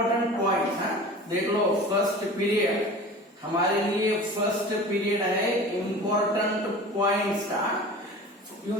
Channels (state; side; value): normal; both; correlation 0.37